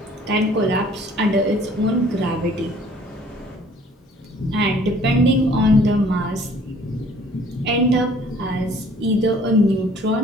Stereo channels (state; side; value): normal; both; correlation 0.55